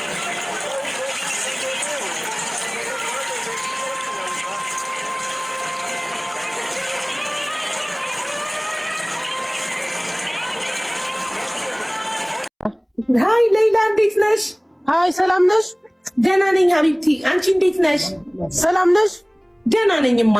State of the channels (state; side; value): identical; both; correlation 1.00